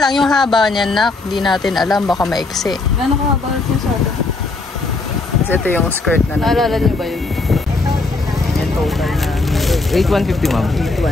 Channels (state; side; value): quieter; right; 3.5 dB